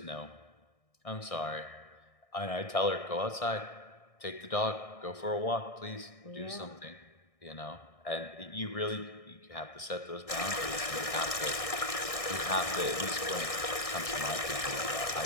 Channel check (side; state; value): right; late; 1.6 ms